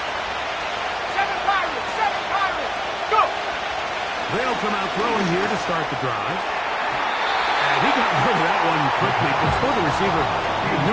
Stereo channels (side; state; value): both; identical; correlation 1.00